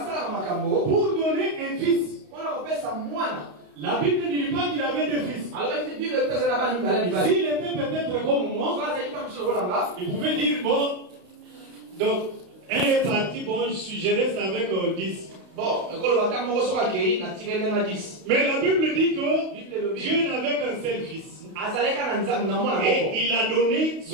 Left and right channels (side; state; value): left; late; 31 ms